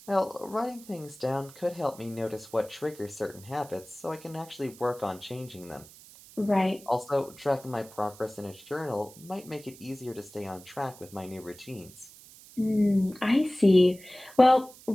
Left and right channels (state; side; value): noise; right; hiss, 20 dB below the sound